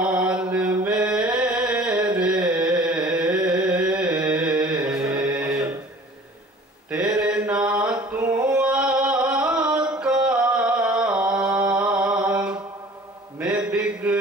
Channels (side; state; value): both; normal; correlation 0.47